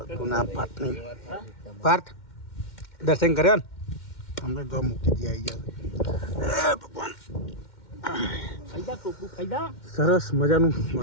ગુના પાર્થ નહીં. પાર્થ દર્શન કર્યા ને અમને જો મૂકી દે આવી ગયા. ભગવાન ફાયદા ટોપલું ફાયદા સરસ મજાનું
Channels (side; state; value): right; late; 2.1 ms